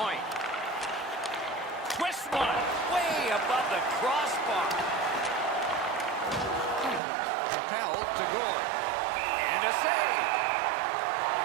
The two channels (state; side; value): drops out; left; at 7.0 s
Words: Twist one. Way above the crossbar. Propelled to Gord. And a save.